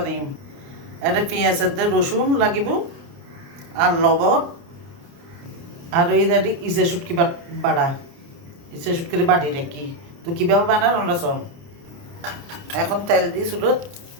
এটা পেঁয়াজের দিয়ে রসুন লাগিব আর লবণ আর এই দাঁড়ি ইসে শুটকি বাড়া ইসে শুটকির বাড়ি রেখি তো কীভাবে বানার আমরা শোন। এখন তেল দিই চুলোত,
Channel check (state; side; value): late; left; 29 ms